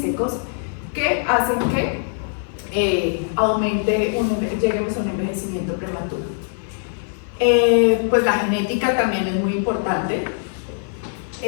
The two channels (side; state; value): right; silent; digital silence